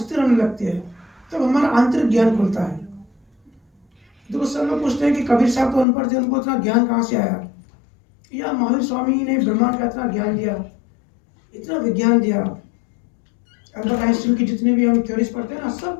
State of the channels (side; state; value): right; drops out; at 5.9 s